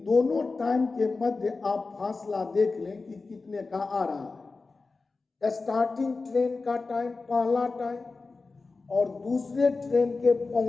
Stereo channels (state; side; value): quieter; right; 3.9 dB